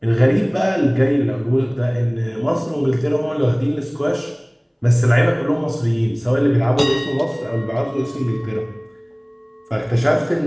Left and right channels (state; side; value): identical; both; correlation 1.00